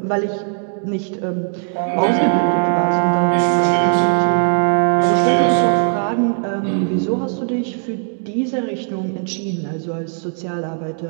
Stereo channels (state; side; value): silent; left; 57 dB below the other